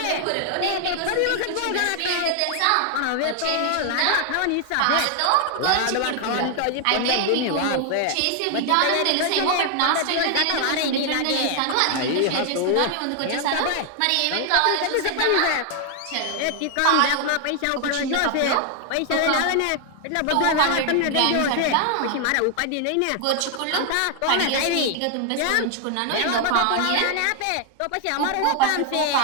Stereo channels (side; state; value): both; different; correlation 0.00